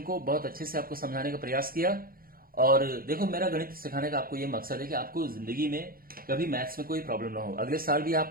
को बहुत अच्छे से आपको समझाने का प्रयास किया। और देखो, मेरा गणित सिखाने का आपको ये मकसद है कि आपको जिंदगी में कभी मैथ्स में कोई प्रॉब्लम ना हो। अगले साल भी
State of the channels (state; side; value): late; left; 0.42 ms